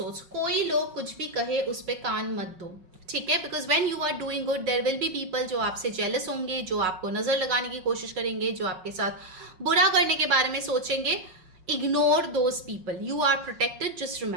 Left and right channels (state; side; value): late; left; 5.5 ms